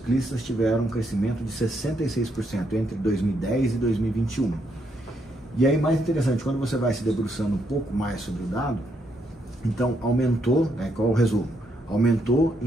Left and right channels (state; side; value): normal; both; correlation 0.76